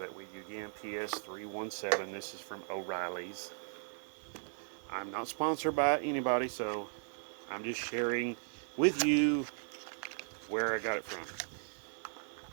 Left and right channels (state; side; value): silent; left; 53 dB below the other